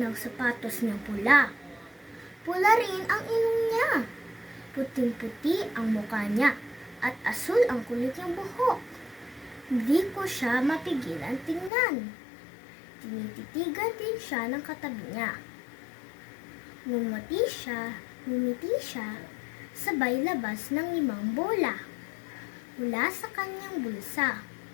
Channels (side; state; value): right; drops out; at 11.7 s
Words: sapatos niyang pula. Pula rin ang ilong niya. Puting-puti ang mukha niya at asul ang kulit niyang buhok. Hindi ko siya mapigilan tingnan. Tinititigan din siya ng katabi niya. Ngumiti siya, sabay labas ng 5 bola mula sa kanyang bulsa.